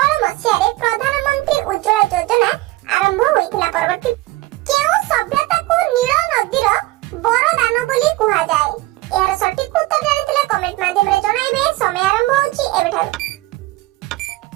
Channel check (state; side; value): quieter; left; 19.0 dB